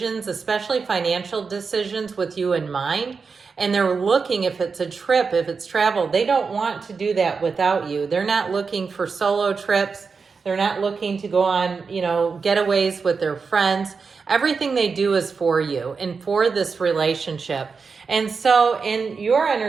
especially financial decisions, with you in mind. And they're looking, if it's a trip, if it's travel, they don't want to do that without you. They're not looking for solo trips. They're not looking to go on, getaways with their friends. Everything they do is for you and for this relationship. And so in your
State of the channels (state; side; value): quieter; left; 5.1 dB